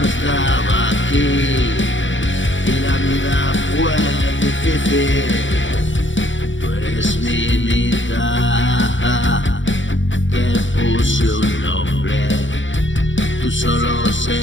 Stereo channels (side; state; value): right; late; 0.55 ms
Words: estaba aquí y la vida fue difícil. Tú eres mi mitad, te puse un nombre. Tú solo